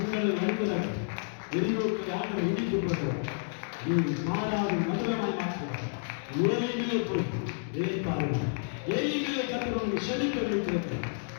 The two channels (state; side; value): silent; right; digital silence